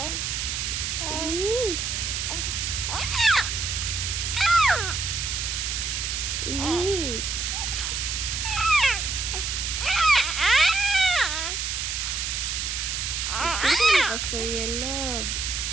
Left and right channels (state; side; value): noise; right; hiss, 2 dB below the sound